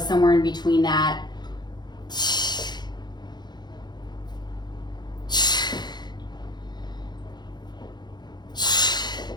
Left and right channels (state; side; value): late; right; 0.21 ms